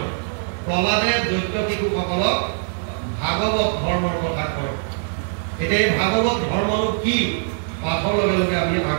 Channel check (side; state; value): left; silent; 57 dB below the other